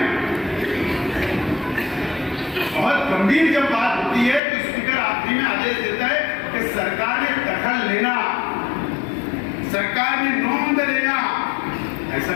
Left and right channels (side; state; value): right; drops out; at 4.4 s